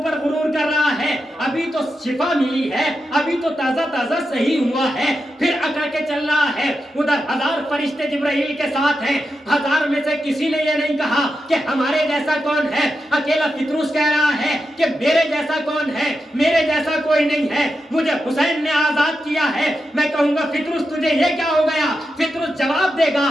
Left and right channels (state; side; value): normal; both; correlation 0.88